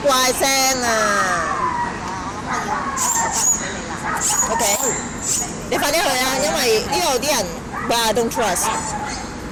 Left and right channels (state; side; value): identical; both; correlation 1.00